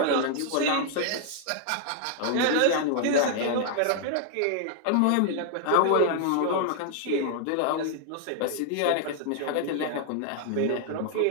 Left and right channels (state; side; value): different; both; correlation 0.00